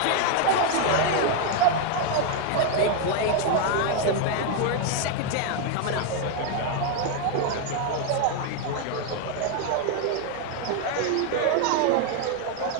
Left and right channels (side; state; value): both; different; correlation 0.00